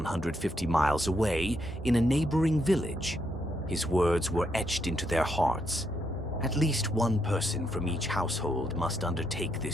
miles away in a neighboring village. His words were etched into their hearts. At least one person from each household must undertake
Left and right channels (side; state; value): both; normal; correlation 0.78